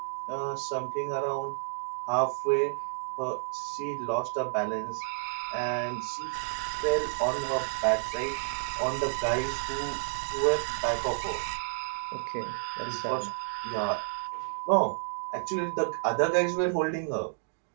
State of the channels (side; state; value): left; silent; digital silence